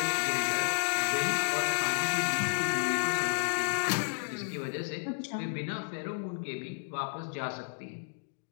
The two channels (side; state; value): right; silent; digital silence